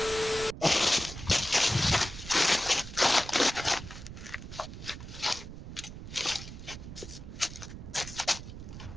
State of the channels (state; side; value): noise; right; rumble, 11 dB below the sound